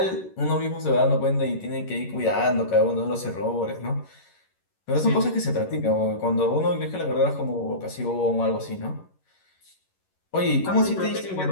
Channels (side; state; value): right; late; 11 ms